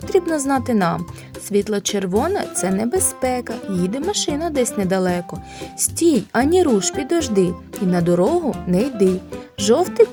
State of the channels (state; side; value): identical; both; correlation 1.00